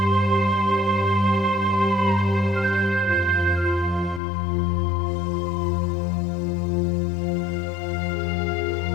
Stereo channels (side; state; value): right; drops out; at 4.2 s